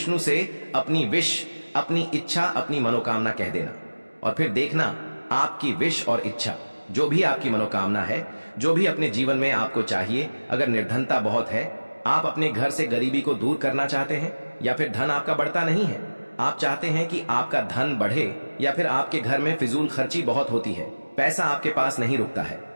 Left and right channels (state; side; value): inverted; both; correlation -1.00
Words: से अपनी विश, अपनी इच्छा, अपनी मनोकामना कह देना और फिर देखना आपकी विश और इच्छा, जो भी आपकी मनोकामना है, जो भी अपने जीवन में आपको चाहिए। अगर निर्धनता बहुत है, आप अपने घर से गरीबी को दूर करना चाहते हैं, या फिर धन आपका बढ़ता नहीं है, आप चाहते हैं कि आपका धन बढ़े, या फिर आपके घर में फिजूल खर्ची बहुत होती है, पैसा आपके पास नहीं रुकता है,